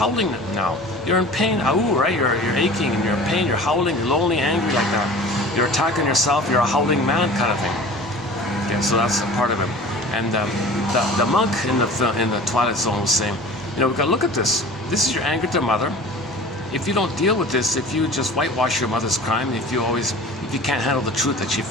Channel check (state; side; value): normal; both; correlation 0.41